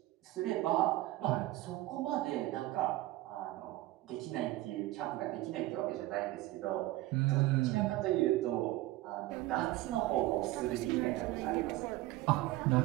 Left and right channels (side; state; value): left; quieter; 17.3 dB